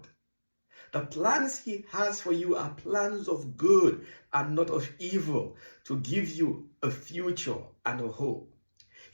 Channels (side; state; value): both; inverted; correlation -1.00